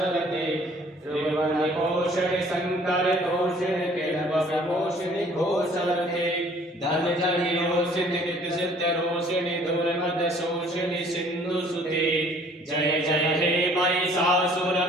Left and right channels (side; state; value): both; normal; correlation 0.56